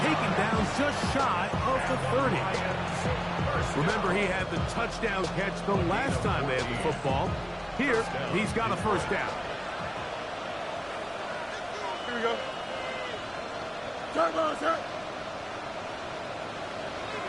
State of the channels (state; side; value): identical; both; correlation 1.00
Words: down just shy of the 30. Remember, he had the touchdown catch the last time they had the football. Here, he's got a first down. Here we go. Turbo, sir.